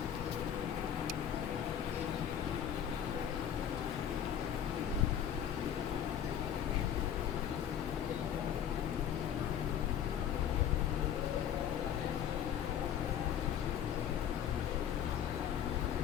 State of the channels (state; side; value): quieter; right; 9.4 dB